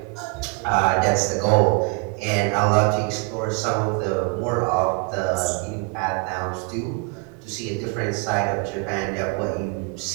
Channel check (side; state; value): left; quieter; 29.4 dB